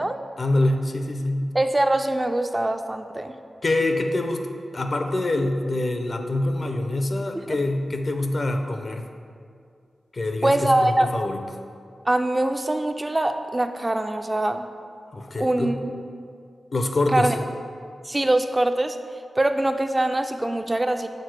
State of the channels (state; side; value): normal; both; correlation 0.96